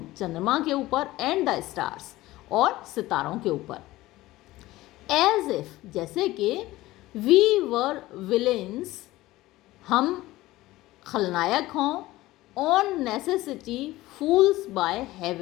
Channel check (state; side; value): quieter; right; 17.5 dB